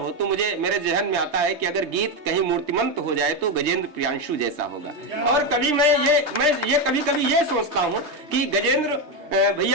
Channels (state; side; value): late; left; 3.3 ms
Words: तो मुझे मेरे जहन में आता है कि अगर गीत कहीं मूर्तिमंत हो जाए तो गजेंद्र प्रियांशु जैसा होगा। और कभी मैं ये कभी ये सोचता हूं कि गजेंद्र